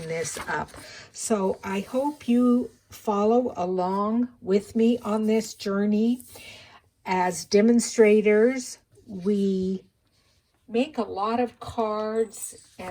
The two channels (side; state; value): both; identical; correlation 1.00